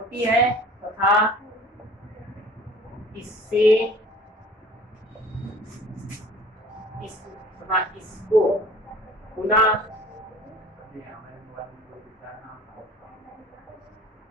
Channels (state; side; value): normal; both; correlation 0.47